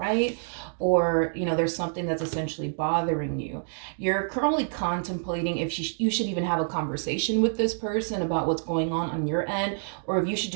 or there's something that's essentially bothering you, you're currently contemplating if you should even have a conversation with this person about what's going on your end, or if you should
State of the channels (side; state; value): left; silent; digital silence